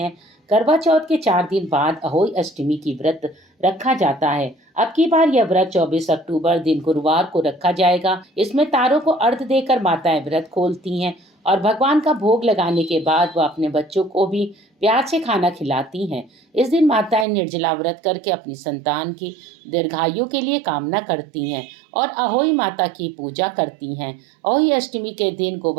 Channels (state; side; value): drops out; left; at 17.2 s